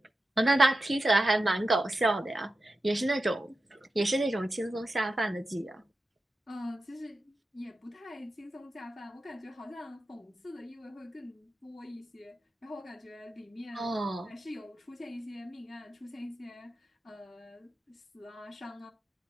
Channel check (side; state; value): both; normal; correlation 0.92